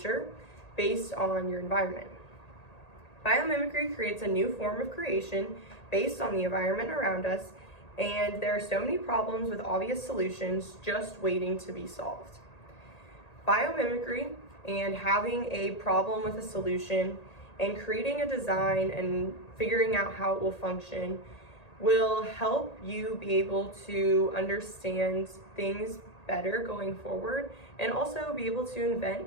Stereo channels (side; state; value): right; late; 1.8 ms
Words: based on your environment. Biomimicry creates a new form of creation based on the environment around us, and there are so many problems with obvious solutions just waiting to be solved. Biomimicry and having a problem with a solution and creating a design and figuring out how it will function will help you be able to understand things better going forward and also be able to